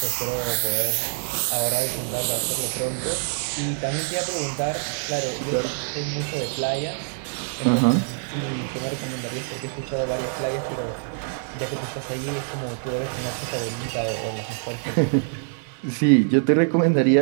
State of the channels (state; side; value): silent; left; digital silence